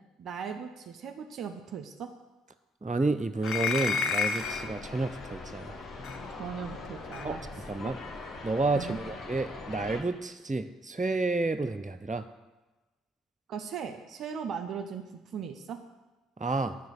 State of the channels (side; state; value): both; normal; correlation 0.70